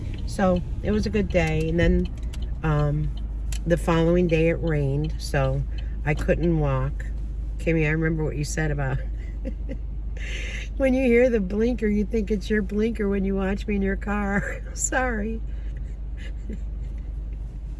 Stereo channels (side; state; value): both; identical; correlation 1.00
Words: So it was a good day. And then the following day it rained, so I couldn't walk. Kimmy, I remember what you said about when you hear the blinker, you think it's your blinker when you watch me in your car. Sorry.